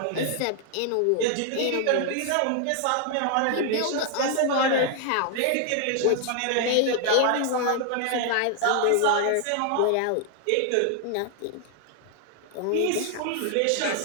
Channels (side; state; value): both; different; correlation 0.00